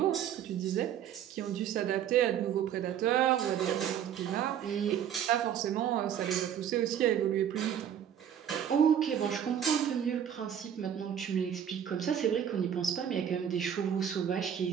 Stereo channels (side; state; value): left; quieter; 9.3 dB